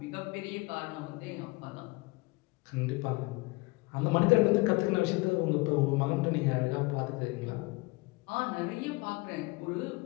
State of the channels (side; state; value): right; quieter; 25.0 dB